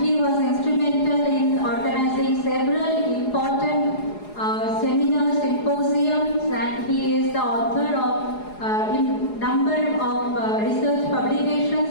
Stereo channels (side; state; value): right; late; 4.8 ms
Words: he was instrumental in organizing several important seminars, symposiums, and he is the author of number of research